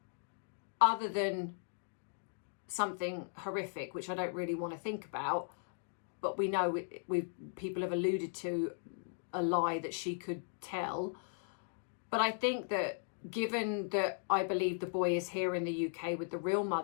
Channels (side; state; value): right; silent; digital silence